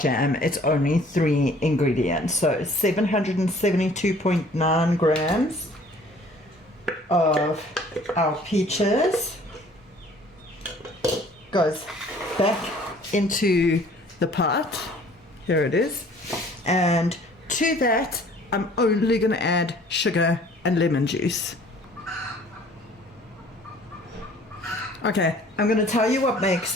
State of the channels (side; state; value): both; normal; correlation 0.54